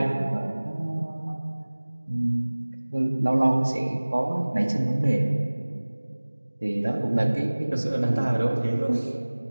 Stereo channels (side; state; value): both; inverted; correlation -1.00